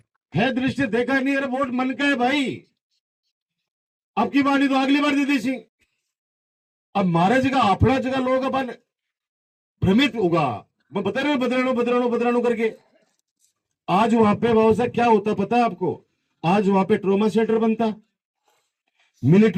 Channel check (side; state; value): both; identical; correlation 1.00